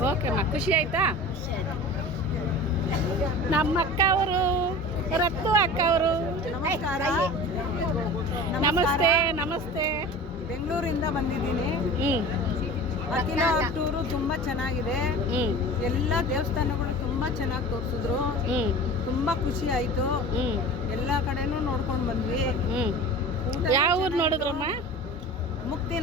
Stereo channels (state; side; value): normal; both; correlation 0.36